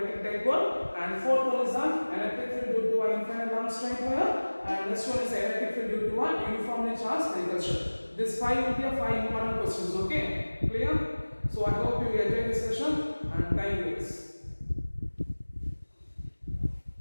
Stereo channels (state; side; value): inverted; both; correlation -1.00